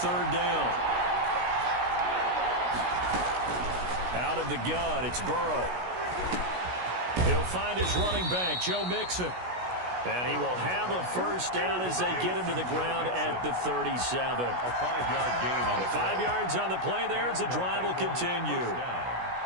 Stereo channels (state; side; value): late; left; 16 ms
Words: down. Out of the gun, it's Burrow. He'll find his running back, Joe Mixon. And he will have a first down as they get him to the ground at the 37. A 5-yard gain on the 5 yards on the play there as the drive will continue.